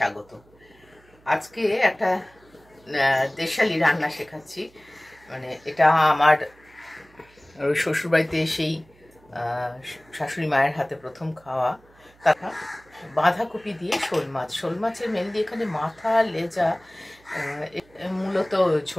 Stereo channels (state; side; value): noise; right; hum, 29 dB below the sound